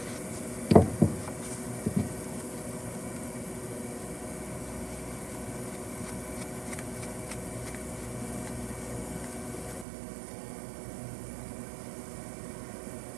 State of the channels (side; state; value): left; drops out; at 9.9 s